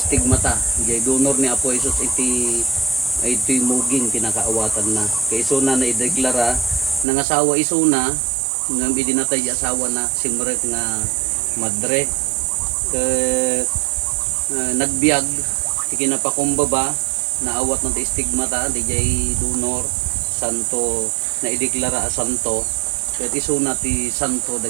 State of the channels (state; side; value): drops out; left; at 7.1 s